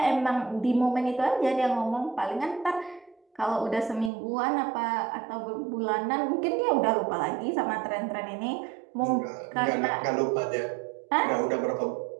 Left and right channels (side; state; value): left; drops out; at 4.1 s